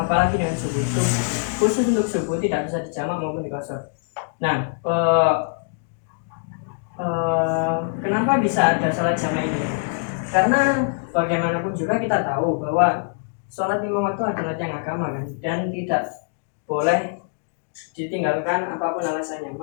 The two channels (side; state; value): right; silent; digital silence